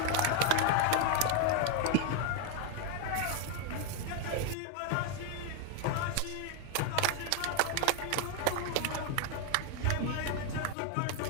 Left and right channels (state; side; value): different; both; correlation 0.01